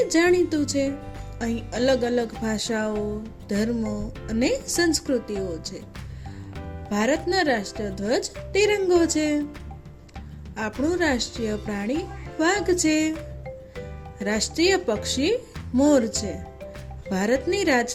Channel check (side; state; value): both; identical; correlation 1.00